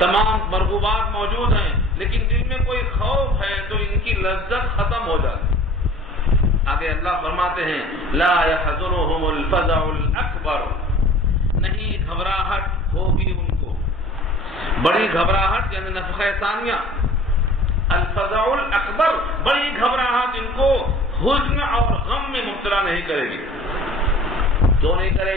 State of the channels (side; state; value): both; normal; correlation 0.46